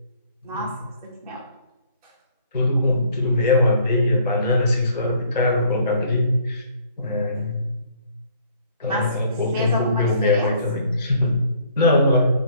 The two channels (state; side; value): inverted; both; correlation -0.60